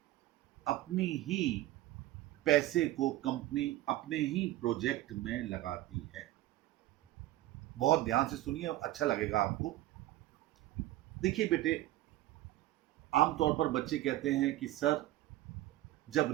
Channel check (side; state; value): left; quieter; 15.8 dB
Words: अपनी ही पैसे को कंपनी अपने ही प्रोजेक्ट में लगाती है। बहुत ध्यान से सुनिए, अच्छा लगेगा आपको। देखिए बेटे, आमतौर पर बच्चे कहते हैं कि सर, जब